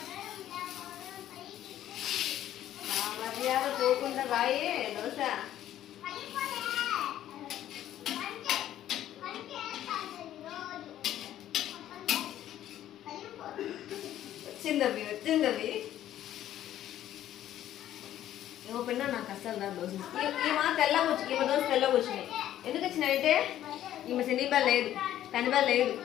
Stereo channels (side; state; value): right; quieter; 12.2 dB